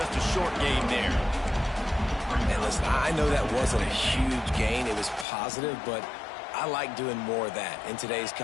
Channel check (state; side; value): drops out; right; at 5.2 s